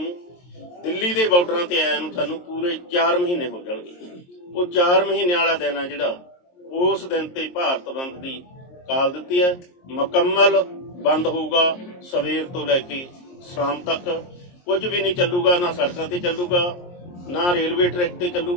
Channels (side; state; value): right; late; 23 ms